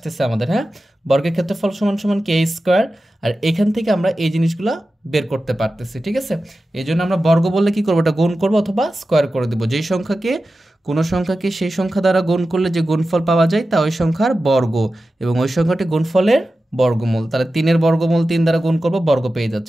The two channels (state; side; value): normal; both; correlation 0.93